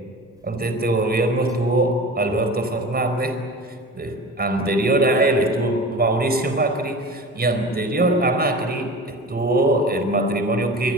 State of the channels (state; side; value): normal; both; correlation 0.35